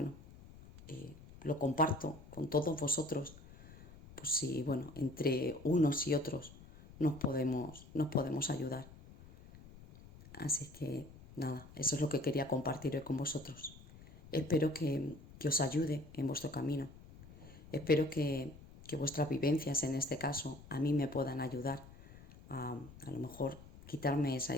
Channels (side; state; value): left; noise; rumble, 19 dB below the sound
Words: lo comparto con todos vosotros, pues si entre unos y otros nos podemos ayudar. Así que nada, eso es lo que quería compartir hoy con vosotros. Espero que os ayude en vuestro camino. Espero que vuestras vivencias, en este caso, a mí me puedan ayudar a lo mejor quitarme esa